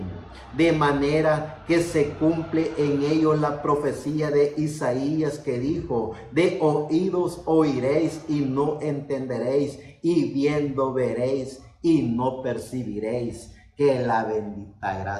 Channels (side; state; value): both; identical; correlation 1.00